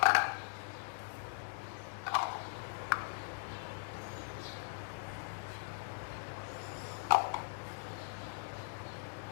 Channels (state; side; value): silent; right; digital silence